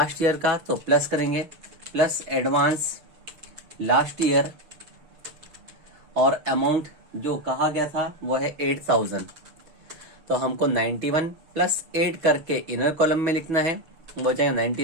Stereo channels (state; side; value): late; left; 6.6 ms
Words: ईयर का, तो प्लस करेंगे, प्लस एडवांस लास्ट ईयर, और अमाउंट जो कहा गया था वो है 8,000। तो हमको 91 प्लस 8 करके इनर कॉलम में लिखना है, वो जाएगा